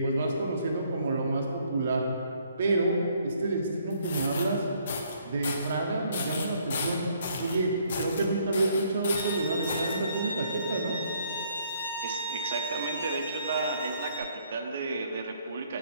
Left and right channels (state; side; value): inverted; both; correlation -0.66